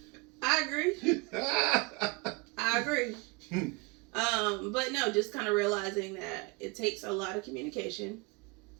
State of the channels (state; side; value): quieter; left; 27.4 dB